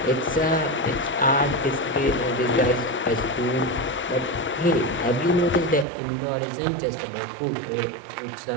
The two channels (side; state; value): left; drops out; at 5.9 s